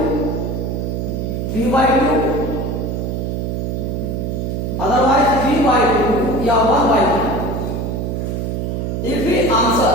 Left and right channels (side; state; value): right; noise; hum, 2 dB below the sound